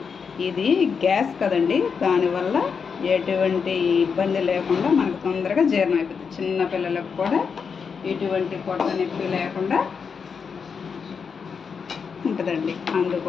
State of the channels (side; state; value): right; quieter; 6.0 dB